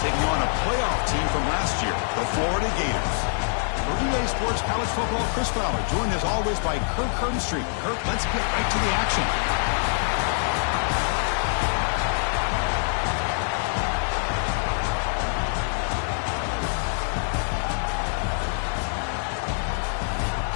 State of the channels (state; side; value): silent; right; digital silence